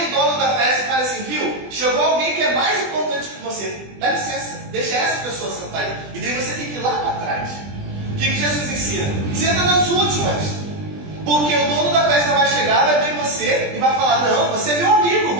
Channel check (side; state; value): left; late; 20 ms